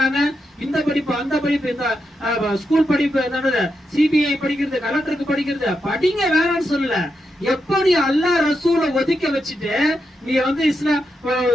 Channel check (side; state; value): both; normal; correlation 0.85